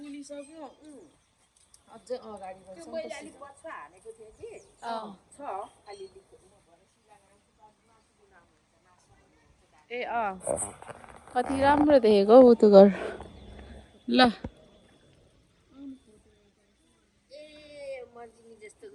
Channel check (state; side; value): identical; both; correlation 1.00